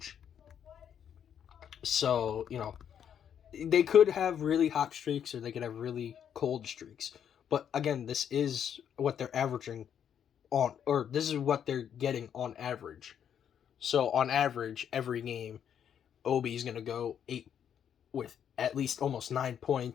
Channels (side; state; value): right; quieter; 8.8 dB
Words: So, they could have really hot streaks or they could have really cold streaks. But again, this is what they're averaging on, or this is what they're getting on average. So on average, every game, Obi's going to go 8 with at least almost 9